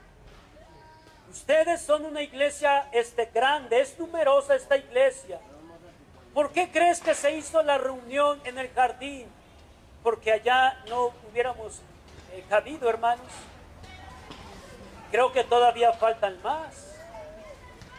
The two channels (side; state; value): both; identical; correlation 1.00